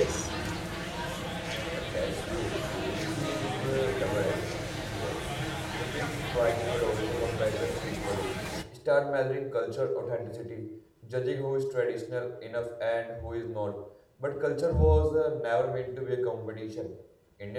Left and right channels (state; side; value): identical; both; correlation 1.00